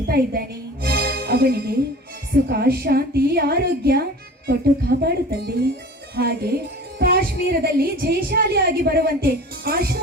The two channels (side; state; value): both; normal; correlation 0.40